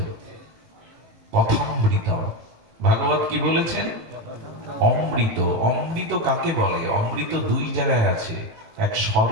কথামৃত। ভাগবত কি বলেছেন? অমৃত। অমৃত কাকে বলে? অমৃত 2 জায়গায় আছে, এক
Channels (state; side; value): late; left; 19 ms